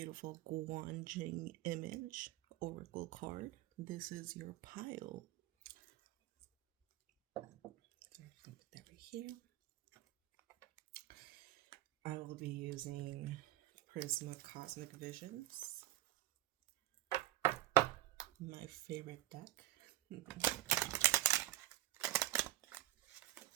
Guanjing image oracle card, this is your pile. So I'm going to put that right here. I will be using Prisma Cosmic Visions, my favorite deck.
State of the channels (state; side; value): quieter; left; 15.5 dB